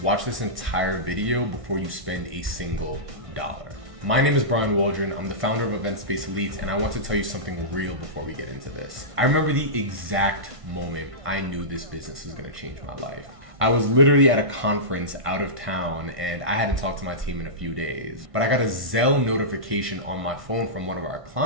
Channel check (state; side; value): late; left; 1.5 ms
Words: watch this entire video before you spend a single dollar. My name is Waldron. I'm the founder of Event Space Elites, and I want to tell you something real before we get into this. I remember the exact moment I knew this business was gonna change my life. I was literally at a conference out of town and I hadn't talked to my team in a few days, but I got a Zelle notification on my phone from one of our